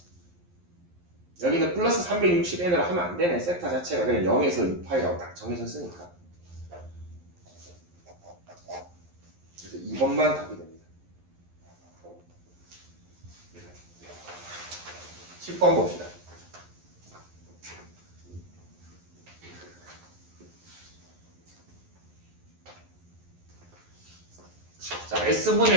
여기는 플러스 360n으로 하면 안 되네. 세타 자체가 그냥 0에서 2파이라고 딱 정해졌으니까. 그래서 2번만 답이 됩니다. 10번 봅시다. 자,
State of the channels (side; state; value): left; late; 11 ms